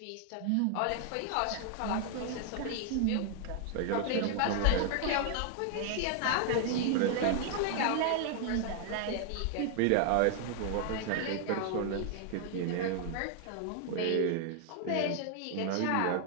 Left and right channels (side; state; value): both; different; correlation 0.00